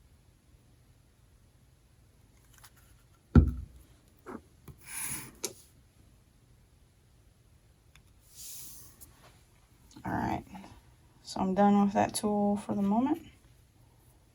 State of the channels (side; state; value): both; identical; correlation 1.00